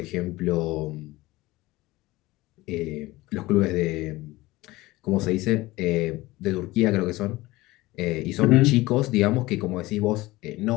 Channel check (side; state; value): right; quieter; 19.3 dB